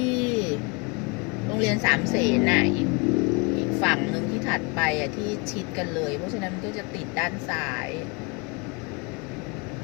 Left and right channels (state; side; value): quieter; right; 29.9 dB